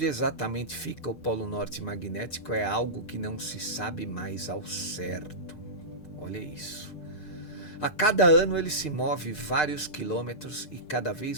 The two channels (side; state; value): right; late; 6.6 ms